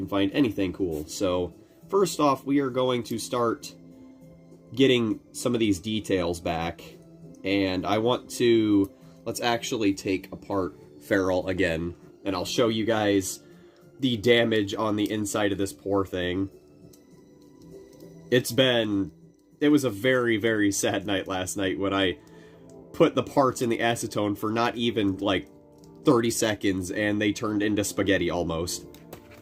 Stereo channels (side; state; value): both; identical; correlation 1.00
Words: find anything cool. So, first off, we are going to start getting some of these details back. And I want to... let's actually take apart Feral again. And I'll show you guys the damage on the inside of this poor thing. It was a very, very sad night last night when I put the parts in the acetone for not even, like, 30 seconds, and they turned into spaghetti almost.